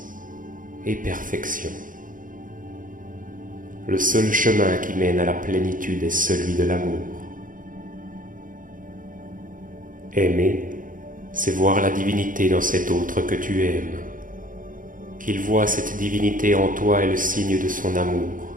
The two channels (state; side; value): late; left; 0.39 ms